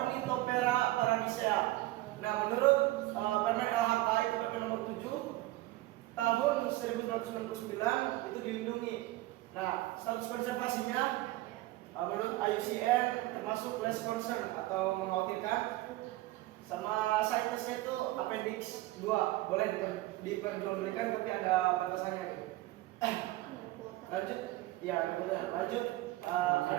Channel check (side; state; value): left; quieter; 17.7 dB